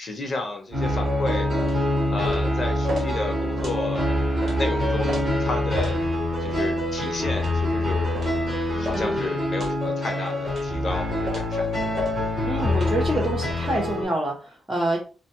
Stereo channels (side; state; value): both; normal; correlation 0.81